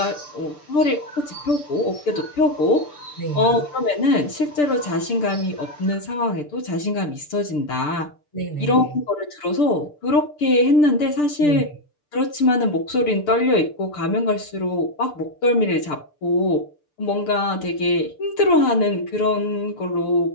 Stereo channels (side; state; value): right; late; 6.8 ms